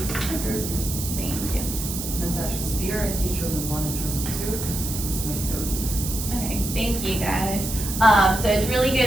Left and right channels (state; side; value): noise; right; hiss, 6 dB below the sound